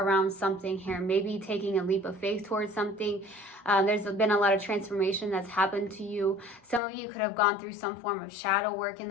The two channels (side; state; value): right; drops out; at 6.8 s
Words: something here. Maybe taking a leap of faith towards something. There's been a lot of transformation that's happened to you. Some of you could have gone through some form of shadow work in